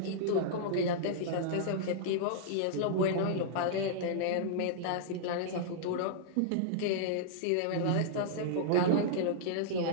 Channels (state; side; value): different; both; correlation -0.02